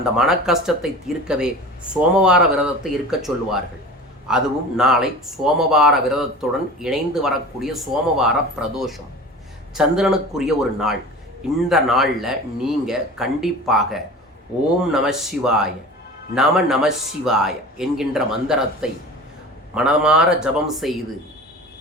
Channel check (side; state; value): both; normal; correlation 0.36